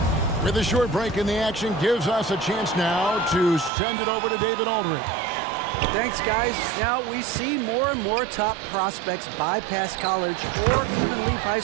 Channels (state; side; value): drops out; left; at 3.7 s